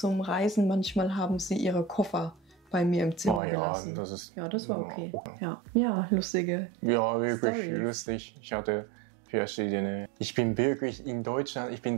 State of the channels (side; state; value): left; drops out; at 3.4 s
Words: Reisen manchmal haben sie ihre Koffer bei mir im Zimmer gelassen. Das war okay. Ja, lustige wirklich Storys. lustig. Ich hatte verschiedene. Ich bin wirklich in Deutschland, ich bin